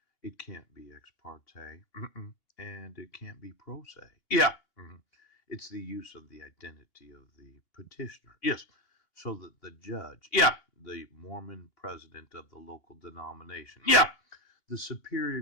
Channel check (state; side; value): late; right; 2.8 ms